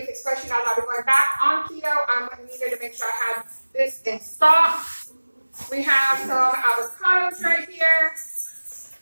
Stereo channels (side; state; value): both; inverted; correlation -1.00